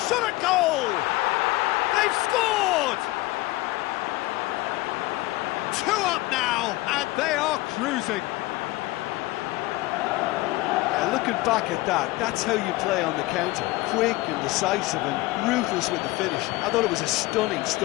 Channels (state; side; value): quieter; right; 19.6 dB